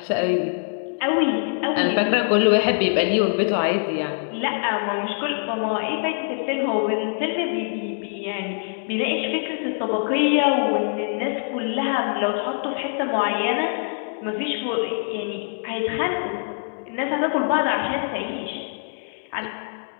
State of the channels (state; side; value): silent; right; 63 dB below the other